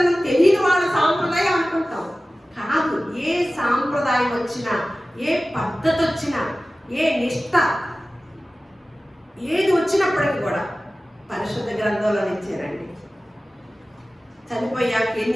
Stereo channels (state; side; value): normal; both; correlation 0.96